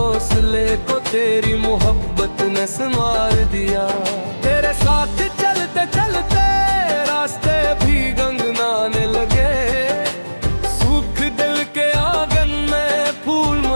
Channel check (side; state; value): both; inverted; correlation -1.00